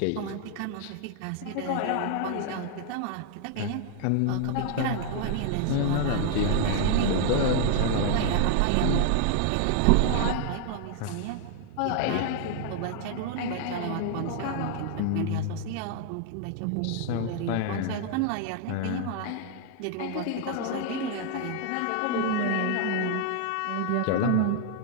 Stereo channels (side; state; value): both; different; correlation 0.00